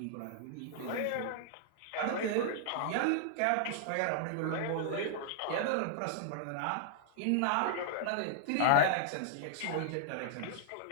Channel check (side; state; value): both; different; correlation -0.01